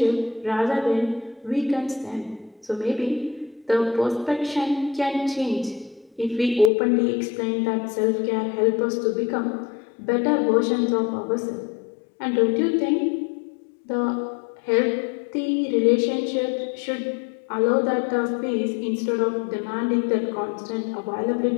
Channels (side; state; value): right; drops out; at 6.7 s